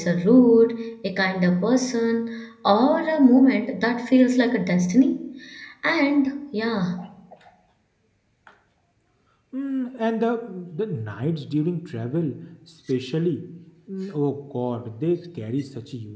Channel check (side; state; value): both; identical; correlation 1.00